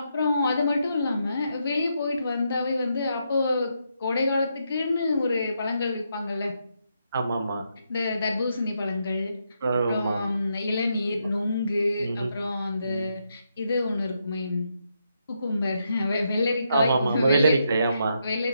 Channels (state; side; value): inverted; both; correlation -0.80